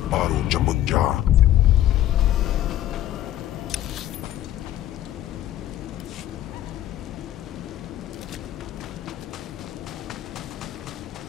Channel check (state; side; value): quieter; right; 13.1 dB